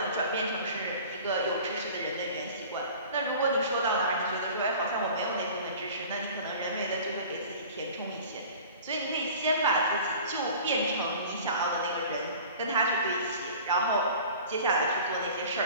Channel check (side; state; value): both; inverted; correlation -0.43